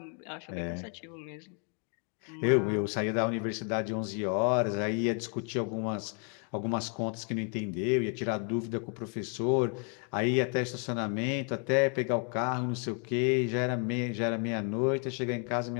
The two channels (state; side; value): quieter; right; 38.7 dB